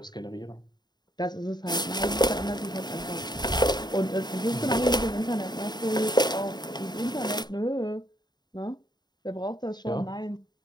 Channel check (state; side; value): late; right; 0.20 ms